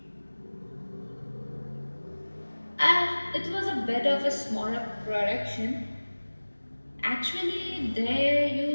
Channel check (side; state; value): both; inverted; correlation -1.00